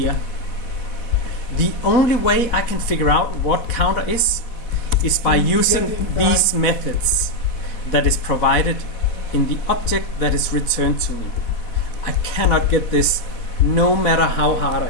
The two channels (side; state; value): right; late; 4.1 ms